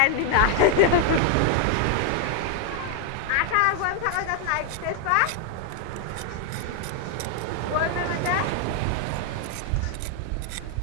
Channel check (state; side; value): different; both; correlation 0.00